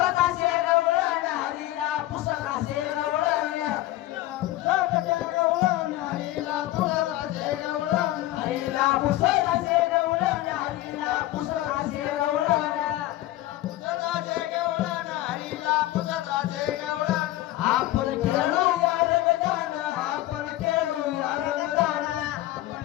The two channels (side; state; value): right; quieter; 15.8 dB